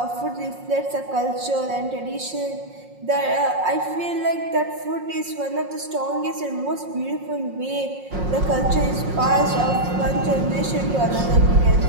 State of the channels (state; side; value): late; left; 5.5 ms